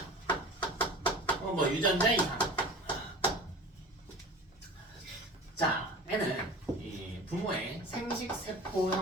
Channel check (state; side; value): normal; both; correlation 0.38